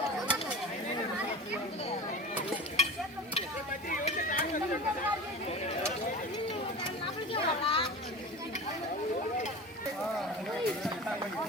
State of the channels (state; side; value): normal; both; correlation 0.32